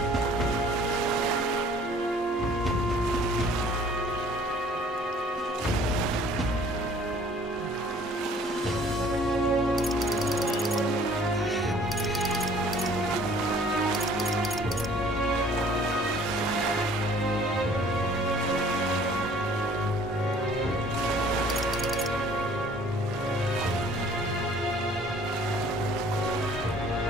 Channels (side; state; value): both; normal; correlation 0.54